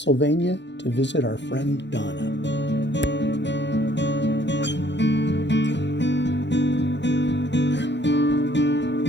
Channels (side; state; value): right; late; 0.52 ms